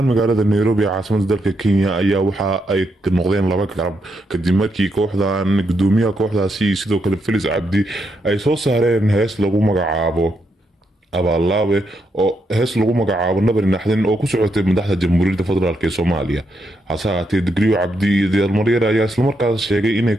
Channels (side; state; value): both; normal; correlation 0.80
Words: magaalada Nairobi caasimada dalka Kenya ayaa waxa ay noqdeen laba garab kadib markii kooxdan gudoomiyaha kooxdaasi sidoo kale Felix Cabdi ay soo saareen hees lagu magacaabo abaallaabe oo hees lagu magacaabo nabar naxdin oo ku socotay madaxda jamhuuriyadda federaalk ee Soomaaliya. hase ahaatee digriyo cabdi iyo dalmaryar ayaa isla markaas sheegay inay